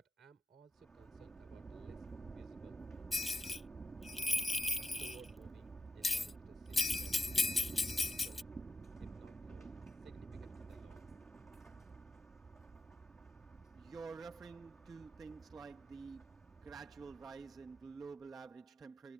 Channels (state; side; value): normal; both; correlation 0.89